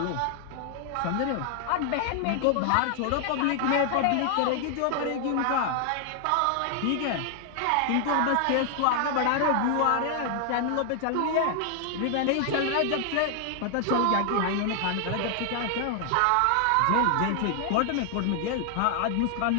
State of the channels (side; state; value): both; different; correlation 0.00